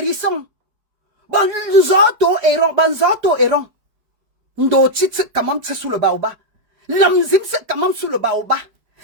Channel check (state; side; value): late; left; 4.9 ms